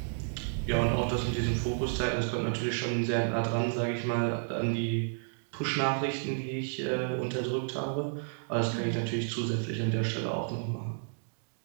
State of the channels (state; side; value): silent; left; digital silence